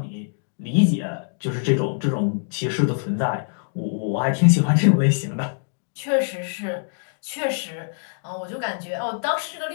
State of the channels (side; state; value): right; silent; digital silence